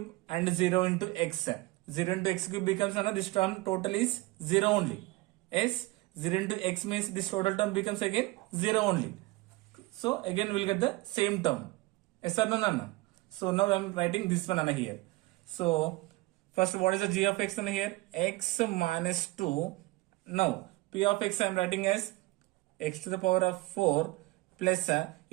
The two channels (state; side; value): quieter; left; 20.8 dB